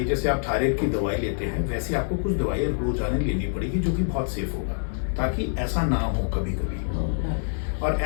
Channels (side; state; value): right; silent; digital silence